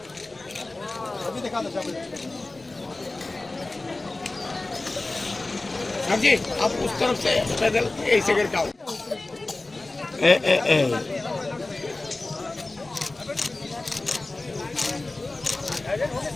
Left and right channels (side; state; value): right; quieter; 3.1 dB